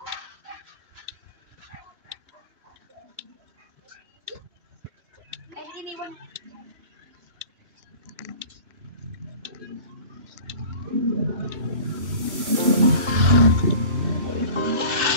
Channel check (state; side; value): late; left; 2.9 ms